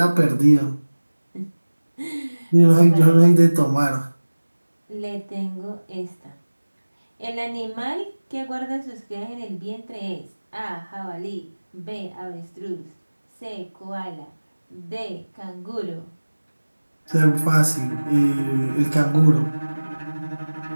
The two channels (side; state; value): both; inverted; correlation -1.00